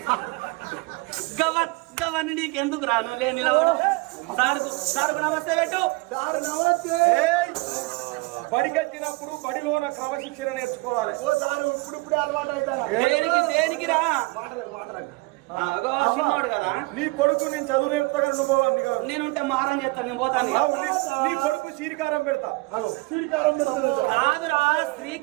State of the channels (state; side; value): quieter; left; 25.2 dB